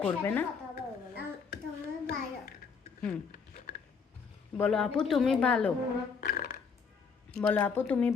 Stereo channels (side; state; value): right; quieter; 5.7 dB